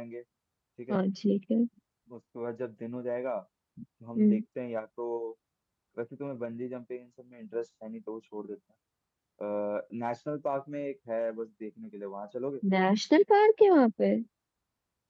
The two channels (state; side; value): identical; both; correlation 1.00